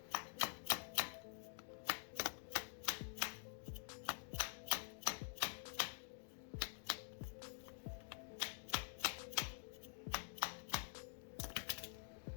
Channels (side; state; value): right; silent; digital silence